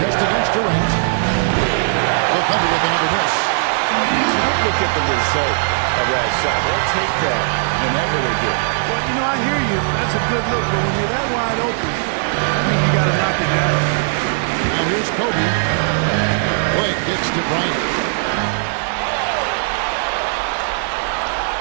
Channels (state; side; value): silent; left; digital silence